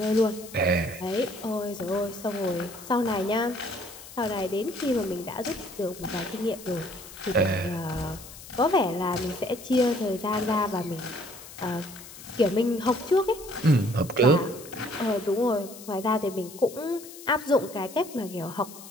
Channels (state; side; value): noise; left; hiss, 16 dB below the sound